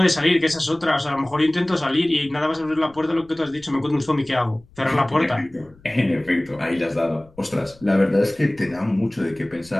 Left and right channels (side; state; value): left; noise; rumble, 27 dB below the sound